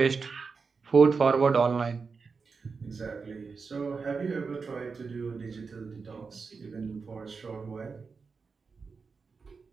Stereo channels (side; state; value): left; quieter; 4.9 dB